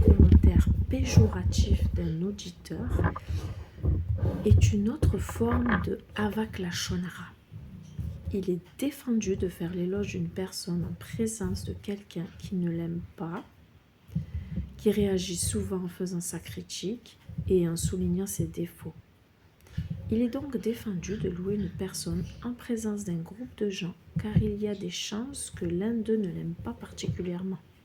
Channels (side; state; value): both; identical; correlation 1.00